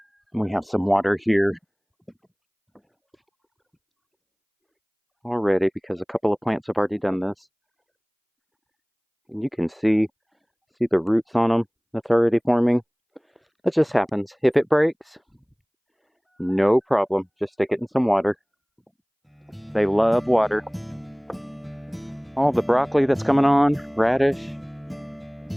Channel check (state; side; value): identical; both; correlation 1.00